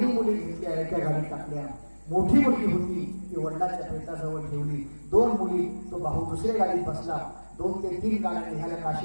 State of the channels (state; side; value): inverted; both; correlation -1.00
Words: मुली घेतल्या एका गाडीत टाकल्या. मोठी मुलगी होती ती वडिलांच्या पेटाजवळ ठेवली. 2 मुली तो भाऊ दुसऱ्या गाडीत बसला. 2 ते 3 गाड्या निघाल्या